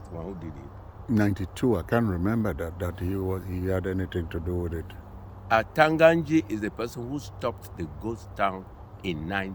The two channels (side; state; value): both; identical; correlation 1.00